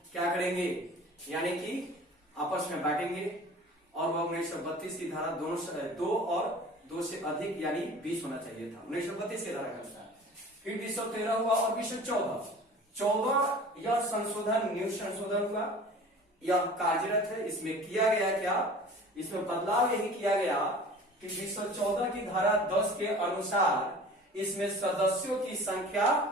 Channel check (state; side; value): normal; both; correlation 0.43